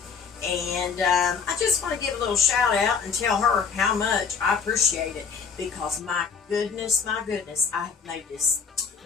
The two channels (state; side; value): quieter; right; 5.9 dB